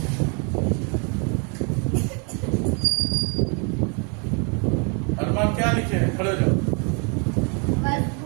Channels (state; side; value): quieter; left; 36.6 dB